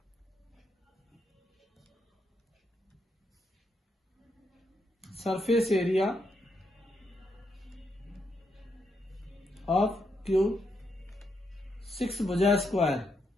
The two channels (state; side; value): normal; both; correlation 0.80